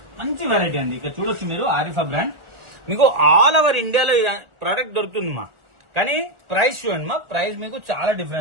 మంచి వెరైటీ అండి. ఇక్కడ చూడొచ్చు మీరు, ఆరిఫా బ్రాండ్. మీకు ఆల్ ఓవర్ ఇండియాలో ప్రోడక్ట్ దొరుకుతుందమ్మా. కానీ ప్రైస్ చూడండి మా, ప్రైస్ మీకు చాలా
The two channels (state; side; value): late; left; 1.4 ms